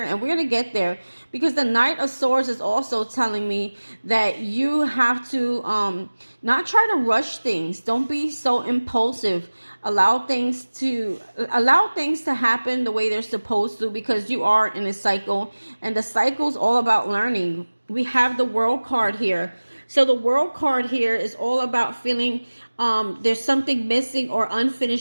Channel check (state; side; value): inverted; both; correlation -1.00